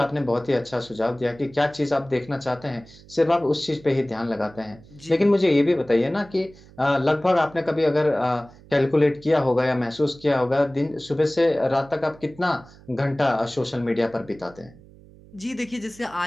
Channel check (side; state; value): right; noise; hum, 23 dB below the sound